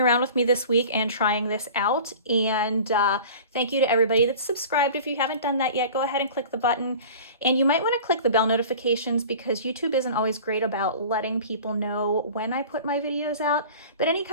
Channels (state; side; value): inverted; both; correlation -0.40